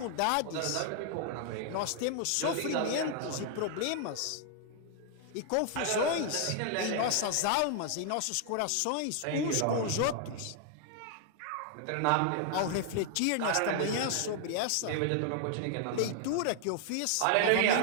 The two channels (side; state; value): both; different; correlation 0.00